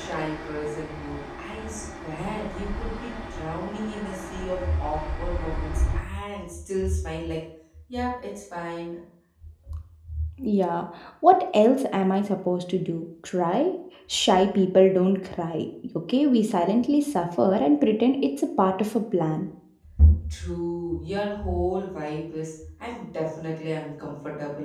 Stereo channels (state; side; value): identical; both; correlation 1.00